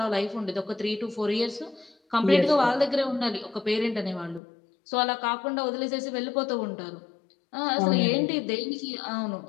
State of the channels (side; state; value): right; drops out; at 4.4 s